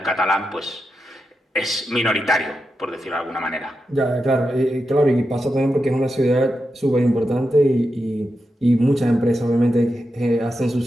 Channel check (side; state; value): both; normal; correlation 0.88